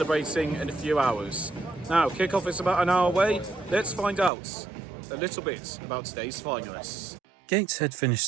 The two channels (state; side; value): drops out; left; at 4.3 s